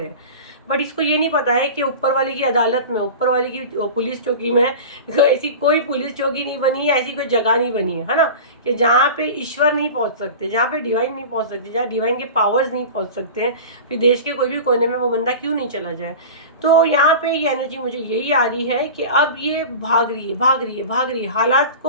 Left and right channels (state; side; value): inverted; both; correlation -0.32